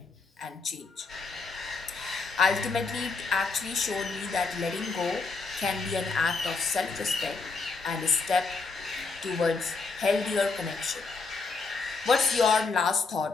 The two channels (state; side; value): quieter; right; 4.2 dB